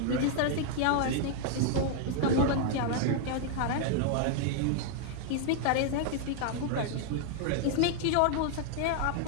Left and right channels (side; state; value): both; different; correlation 0.00